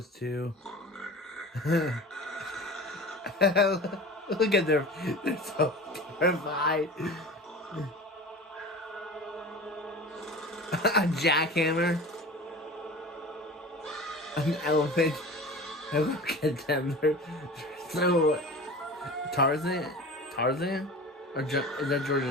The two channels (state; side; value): normal; both; correlation 0.36